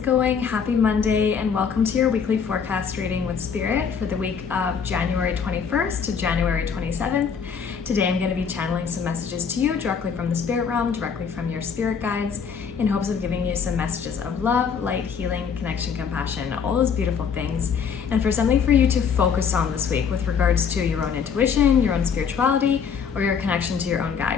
going? Happy Monday and welcome to your weekly forecast reading with Spirit for the week of January 21st to January 27th. Today I'm going to be channeling some messages to you directly from the spirit realm, directly from your spirit guides, in hopes of giving you some messages of love, light, healing, connection, compassion, all those beautiful things, and for something for you to focus on this week with regards to your own intuition, your own spirituality, or your connection to your own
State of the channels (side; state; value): right; quieter; 6.6 dB